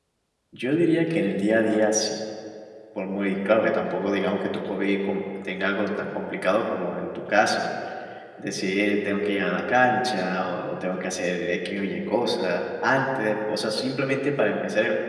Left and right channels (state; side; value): identical; both; correlation 1.00